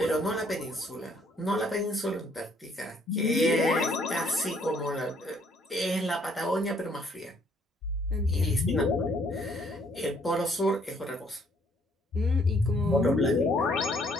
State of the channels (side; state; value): both; normal; correlation 0.65